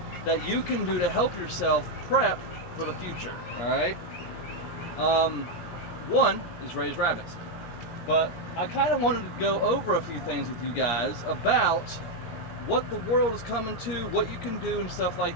that you can do to help yourself prep for the future. Alright? One is raise rabbits. But I kind of wanted to go over a few things with you guys about what the world is coming to, what you can do, and stuff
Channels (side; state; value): right; late; 17 ms